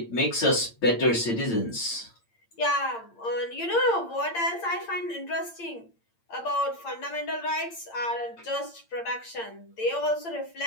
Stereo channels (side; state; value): right; late; 8.7 ms